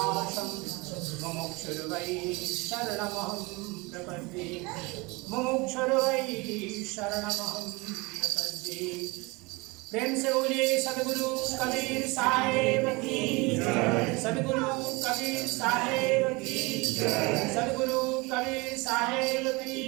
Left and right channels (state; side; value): quieter; left; 25.5 dB